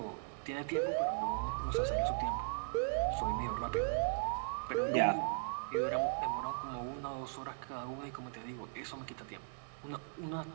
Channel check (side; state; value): left; silent; 52 dB below the other